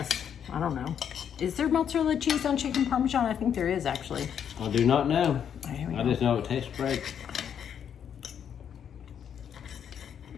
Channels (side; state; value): right; quieter; 8.4 dB